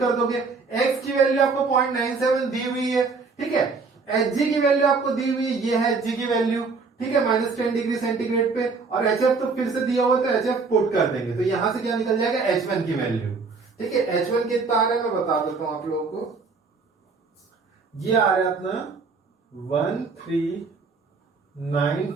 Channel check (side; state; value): left; quieter; 4.5 dB